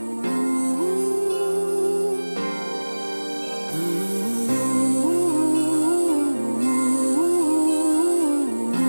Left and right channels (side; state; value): both; inverted; correlation -1.00